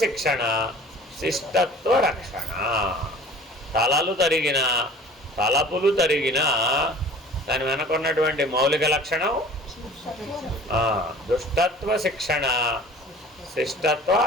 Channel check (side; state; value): both; normal; correlation 0.45